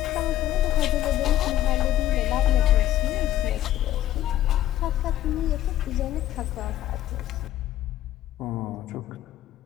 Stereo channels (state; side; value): quieter; right; 12.9 dB